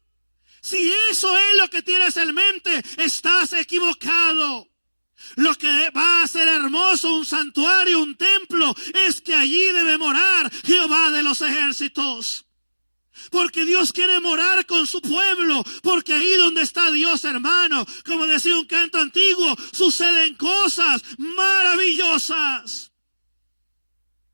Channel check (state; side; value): inverted; both; correlation -1.00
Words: Si eso es lo que tienes en mente, estás equivocado. Lo que va a hacer hermoso un santuario, un templo, es que allí debe morar Jehová de los ejércitos. Porque Dios quiere morar con su pueblo, porque ahí donde está Dios, hermano, como decía un canto antiguo, suceden cosas maravillosas.